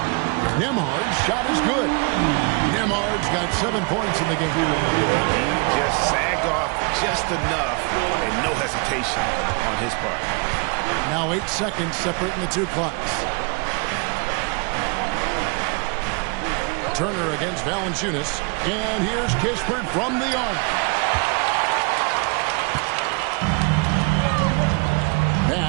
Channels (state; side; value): quieter; left; 32.1 dB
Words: Nembhard's shot is good. Nembhard's got 7 points in the game. He just sagged off just enough and no hesitation on his part. Now 8 seconds separating the 2 clocks. Turner against Valanciunas. And here's Kispert from the arc.